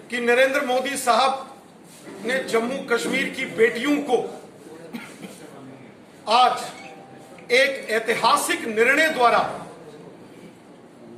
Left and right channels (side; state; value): both; identical; correlation 1.00